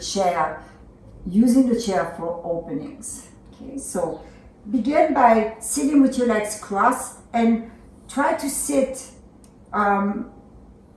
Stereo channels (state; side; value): identical; both; correlation 1.00